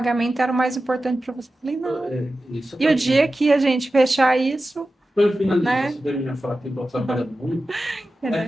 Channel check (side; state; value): both; normal; correlation 0.94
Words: era o mais importante para você. Eu falei, não. Isso E o para dia que a gente fechar isso, Para eu finalizar né? sobre a minha fala que eu estou trabalhando muito, é